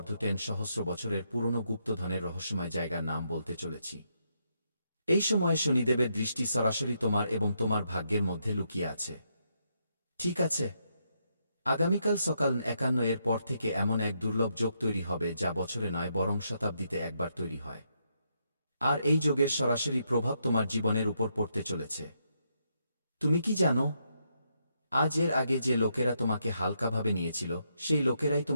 সহস্র বছরের পুরনো গুপ্তধনের রহস্যময় জায়গার নাম বলতে চলেছি। এই সময়ে শনিদেবের দৃষ্টি সরাসরি তোমার এবং তোমার ভাগ্যের মধ্যে লুকিয়ে আছে। ঠিক আছে? আগামীকাল সকাল ৫১ এর পর থেকে এমন এক দুর্লভ যোগ তৈরি হবে যা বছরে নয় বরং শতাব্দীতে একবার তৈরি হয়। আর এই যোগের সরাসরি প্রভাব তোমার জীবনের উপর পড়তে চলেছে। তুমি কি জানো? আজ এর আগে যে লোকেরা তোমাকে হালকাভাবে নিয়েছিল, সেই লোকেরাই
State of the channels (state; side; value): inverted; both; correlation -0.78